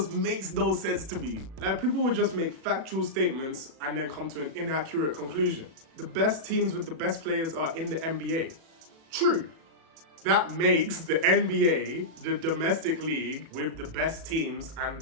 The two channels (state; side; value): late; left; 37 ms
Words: makes no sense to me. Like, people would just make factual statements and then come to an inaccurate conclusion. The best teams with the best players are in the NBA. True. That makes the NBA the domestic league with the best teams and